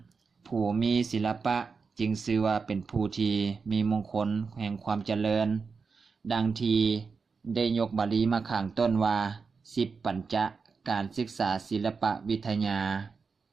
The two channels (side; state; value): left; quieter; 5.0 dB